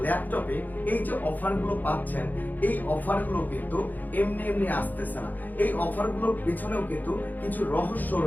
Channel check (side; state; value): right; late; 0.084 ms